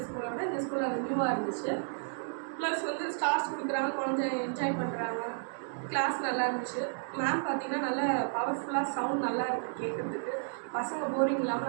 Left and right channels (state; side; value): silent; left; digital silence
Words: ஸ்கூலை விட இந்த ஸ்கூலில் அது நியூவாக இருந்துச்சு. ப்ளஸ் வந்து ஸ்டார்ஸ் கொடுக்குறாங்க, குழந்தை என்ஜாய் பண்ணுறாங்க. கிளாஸ் நல்லா இருந்துச்சு. மேம் பார்த்தீங்கன்னா நல்லா பவர்ஃபுல்லாக சவுண்ட் நல்லா இருக்குது கேட்குறதுக்கு. பசங்க போரிங்